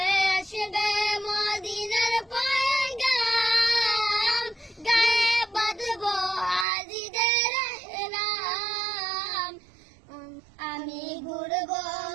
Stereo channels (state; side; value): drops out; left; at 6.7 s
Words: আসবে মদিনার পয়গাম, গায়ে বাঁধবো হাজিরের নাম। আমি ঘুরবো